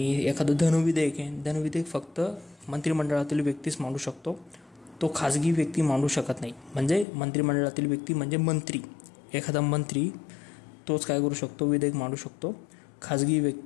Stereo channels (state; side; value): drops out; right; at 7.1 s